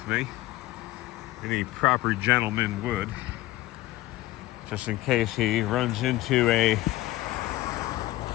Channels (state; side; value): quieter; right; 17.2 dB